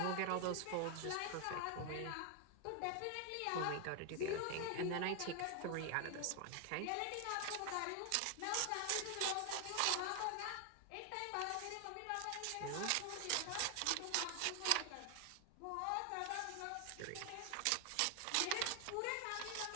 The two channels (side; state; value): both; different; correlation 0.00